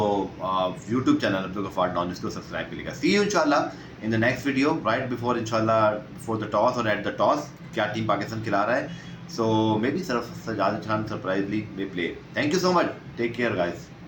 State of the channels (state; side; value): identical; both; correlation 1.00